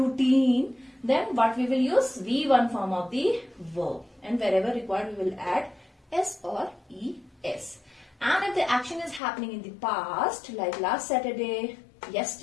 then what we will use? V1 form of the verb. And wherever required, we will add S or ES. And if the action is happening in the past, like last Saturday,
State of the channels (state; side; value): drops out; right; at 9.2 s